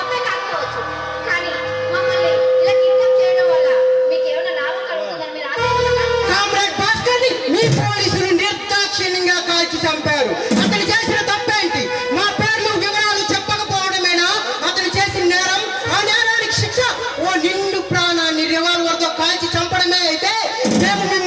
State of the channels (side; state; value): both; identical; correlation 1.00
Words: కామ్రేడ్ భాస్కర్ ని మీ పోలీసులు నిర్దాక్షిణ్యంగా కాల్చి చంపారు. అతను చేసిన తప్పేంటి? మా పేర్లు వివరాలు చెప్పకపోవడమేనా అతను చేసిన నేరం? ఆ నేరానికి శిక్ష ఓ నిండు ప్రాణాన్ని రివాల్వర్ తో కాల్చి చంపడమే అయితే మేము